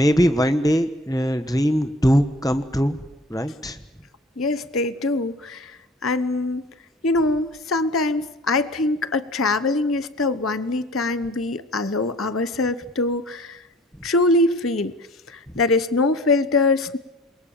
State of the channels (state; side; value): normal; both; correlation 0.48